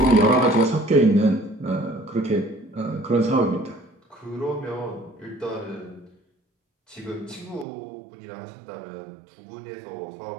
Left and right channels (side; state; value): left; drops out; at 7.7 s